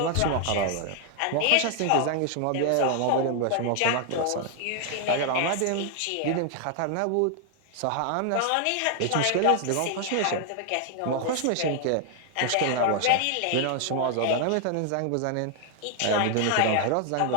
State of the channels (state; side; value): different; both; correlation 0.00